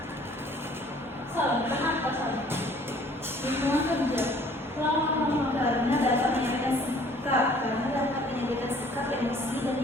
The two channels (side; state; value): both; normal; correlation 0.55